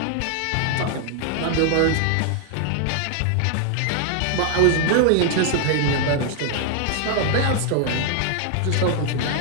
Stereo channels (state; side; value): different; both; correlation 0.00